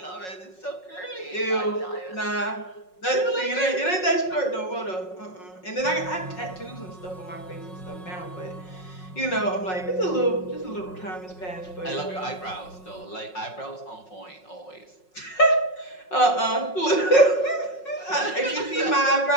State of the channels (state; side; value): late; right; 5.5 ms